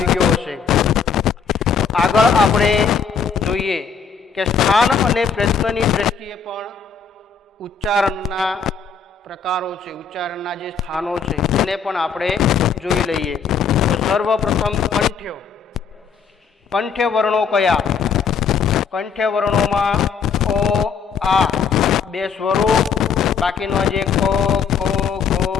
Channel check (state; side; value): quieter; right; 6.1 dB